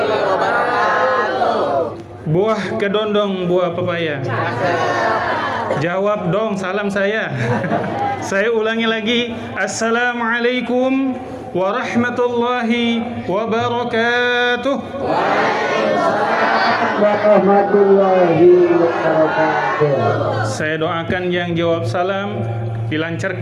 Buah kedondong, buah pepaya. Jawab dong salam saya. Saya ulangi lagi. Assalamualaikum warahmatullahi wabarakatuh. Warahmatullahi wabarakatuh. Saya doakan yang jawab salam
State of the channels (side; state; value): both; identical; correlation 1.00